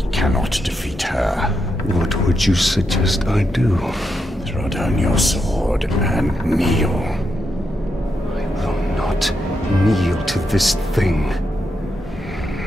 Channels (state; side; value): normal; both; correlation 0.83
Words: cannot defeat her. What would you suggest I do? Throw down your sword and kneel. I will not kneel to this thing.